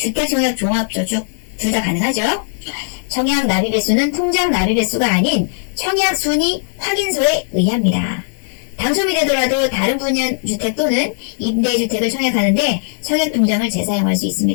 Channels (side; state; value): right; silent; digital silence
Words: 종합저축 둘 다 가능하죠. 청약 납입 횟수는 통장 납입 횟수가 아닌 청약 순위 확인서에 의합니다. 당첨이 되더라도 다른 분야 주택 또는 임대주택을 청약하는데 청약통장을 재사용할 수